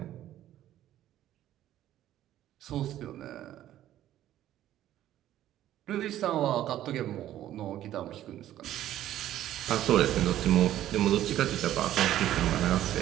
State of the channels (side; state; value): left; quieter; 12.7 dB